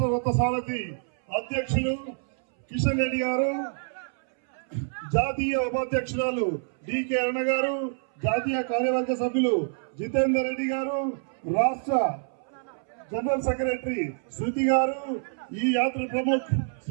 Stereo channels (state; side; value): silent; left; 60 dB below the other